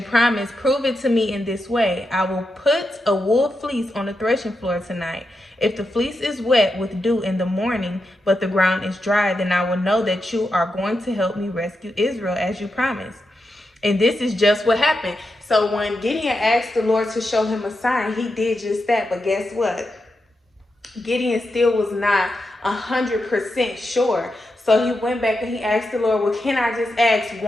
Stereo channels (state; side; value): normal; both; correlation 0.87